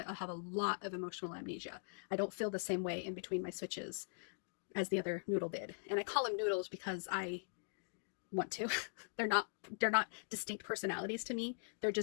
I have a lot of emotional amnesia. I don't feel the same way in between my switches as the other noodle did. And I call them noodles because I want to. They're not distinct personalities to me. They're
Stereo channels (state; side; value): silent; right; digital silence